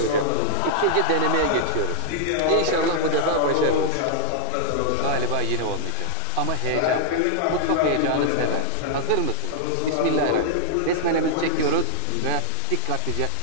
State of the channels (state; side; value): different; both; correlation -0.01